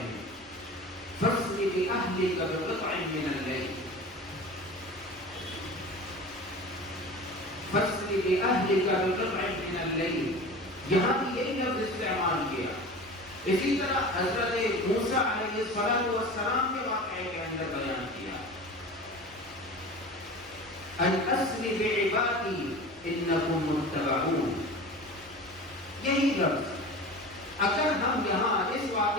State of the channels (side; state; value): both; normal; correlation 0.35